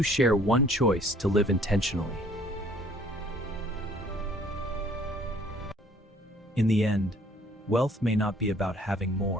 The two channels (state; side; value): normal; both; correlation 0.58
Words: share one choice to live intentionally. In the end, wealth may not be about having